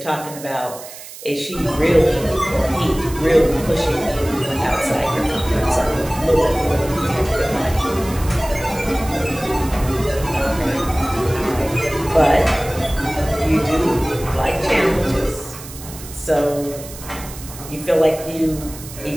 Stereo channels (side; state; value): right; noise; hiss, 14 dB below the sound